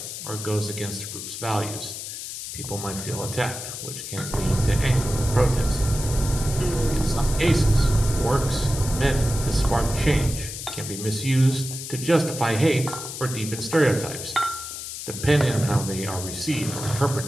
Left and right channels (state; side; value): noise; left; hiss, 8 dB below the sound